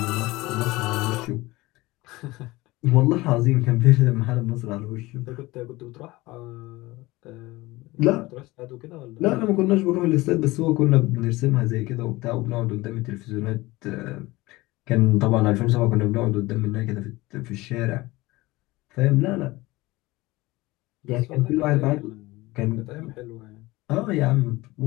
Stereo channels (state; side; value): quieter; right; 20.4 dB